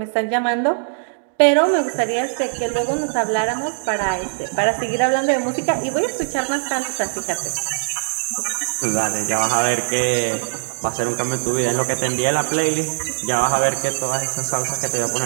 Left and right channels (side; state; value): left; silent; digital silence